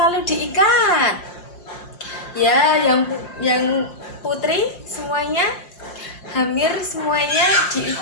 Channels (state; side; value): late; right; 5.7 ms